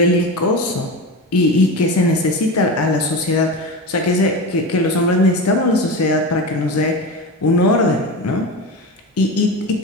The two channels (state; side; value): normal; both; correlation 0.24